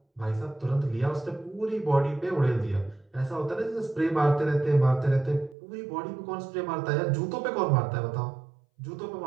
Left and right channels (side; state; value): left; drops out; at 5.6 s